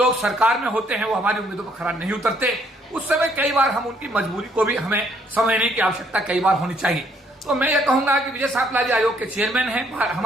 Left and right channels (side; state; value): both; normal; correlation 0.67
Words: सरकार में होते हैं वो हमारी उम्मीदों पर खरा नहीं उतरते। उस समय कई बार हम उनकी मजबूरी को भी हमें समझने की आवश्यकता कई बार होनी चाहिए। तो मैं ये कहूंगा कि विजय सापला जी आयोग के चेयरमैन हैं,